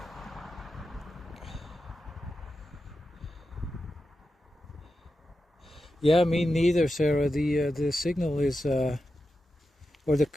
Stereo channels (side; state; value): both; normal; correlation 0.90